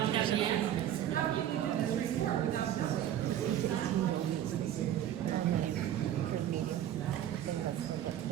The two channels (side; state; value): left; quieter; 11.2 dB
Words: have the answers.